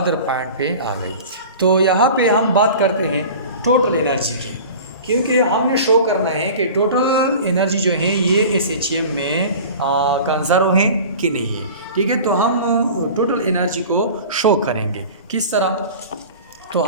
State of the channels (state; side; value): inverted; both; correlation -0.38